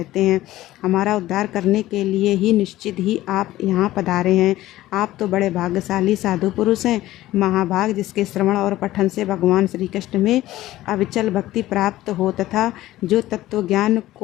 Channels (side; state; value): right; quieter; 15.6 dB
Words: हैं। हमारा उद्धार करने के लिए ही निश्चित ही आप यहाँ पधारे हैं। आप तो बड़े भाग्यशाली साधु पुरुष हैं, महाभाग, जिसके श्रवण और पठन से भगवान श्री कृष्ण में अविचल भक्ति प्राप्त हो तथा जो तत्व ज्ञान